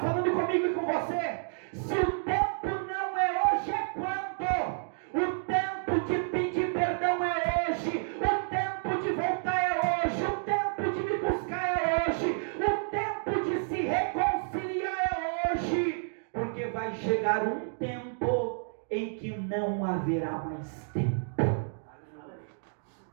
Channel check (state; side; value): silent; left; digital silence